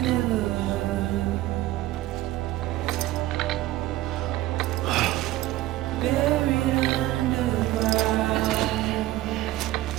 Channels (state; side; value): quieter; left; 16.1 dB